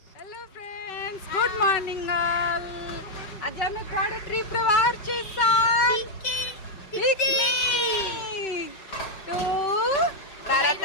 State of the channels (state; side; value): late; right; 5.3 ms